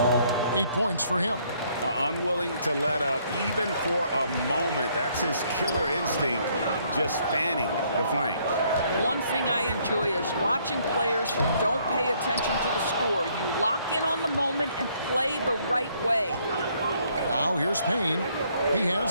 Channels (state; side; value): inverted; both; correlation -0.67